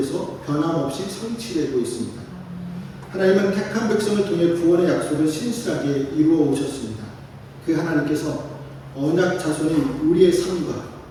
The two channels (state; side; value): identical; both; correlation 1.00